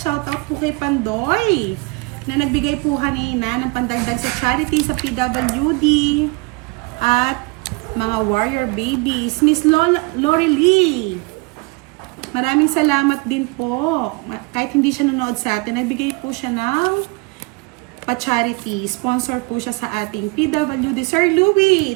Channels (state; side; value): quieter; left; 27.3 dB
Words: Shoutout po kay Pandoy, na nagbigay po kanina ng pandagdag sa charity sa PWD at mga warrior babies. Miss Lori Lee, maraming salamat din po. Kahit hindi siya nanood sa atin, nagbigay po siya ng pa-charity. Sponsor po siya sa ating PWD. Sir